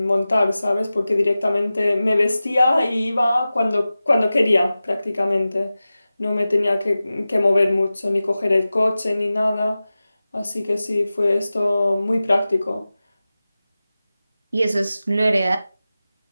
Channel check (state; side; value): inverted; both; correlation -0.95